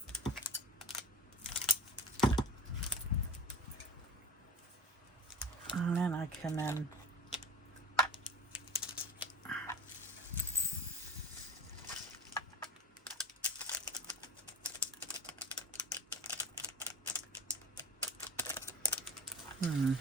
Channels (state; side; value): normal; both; correlation 0.34